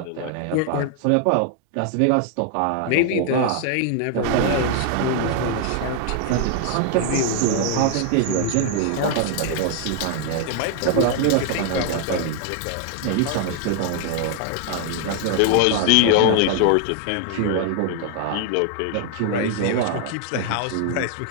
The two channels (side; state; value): both; different; correlation 0.00